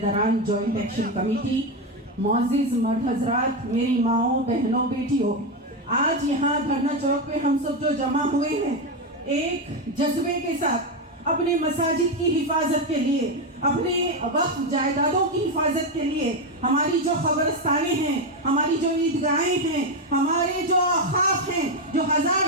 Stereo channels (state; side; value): normal; both; correlation 0.10